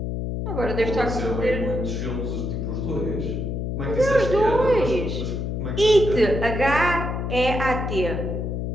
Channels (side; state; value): left; noise; hum, 2 dB below the sound